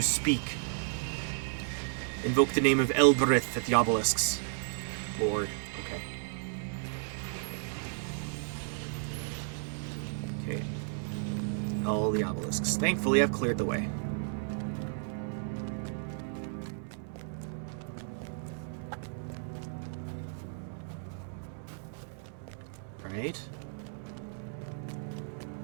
speak. Invoke the name of Elbereth at the obelisks. Lord, okay. Okay. All the obelisks. Thankfully, I've cleared the way. Right.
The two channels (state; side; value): silent; left; 55 dB below the other